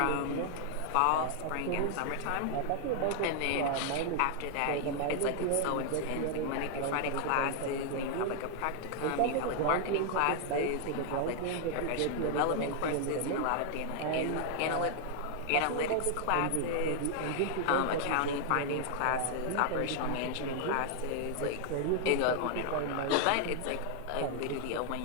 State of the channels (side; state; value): both; different; correlation 0.00